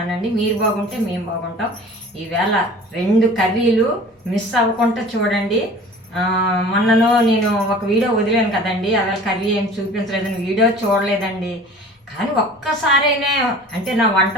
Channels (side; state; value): both; normal; correlation 0.43